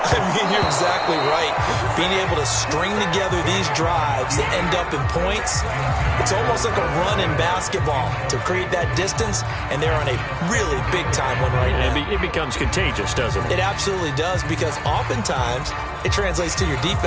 I mean, you're exactly right. Being able to string together these drives that end up in points, it's almost like a run in basketball to create that distance, and they're on a really big-time one right now. It becomes contagious, doesn't it? It absolutely does, because oftentimes it translates to your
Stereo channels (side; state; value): both; identical; correlation 1.00